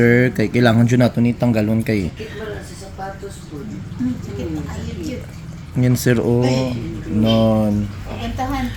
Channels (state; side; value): identical; both; correlation 1.00